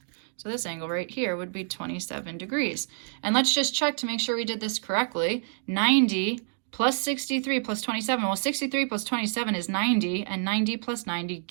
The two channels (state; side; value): silent; left; digital silence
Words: So this angle right here would be 27 degrees. And let's just check to make sure we did this correctly. 90 plus 63 plus 27. Well, 63 plus 27 is 90, and 90 plus 90